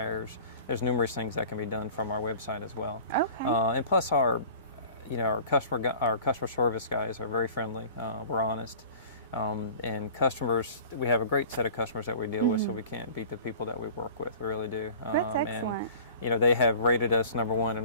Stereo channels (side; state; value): both; inverted; correlation -0.43